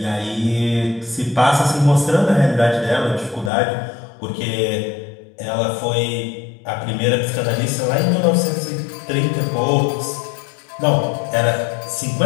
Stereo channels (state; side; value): drops out; right; at 3.5 s